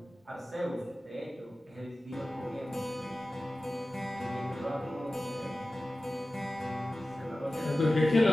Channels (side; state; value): both; normal; correlation 0.96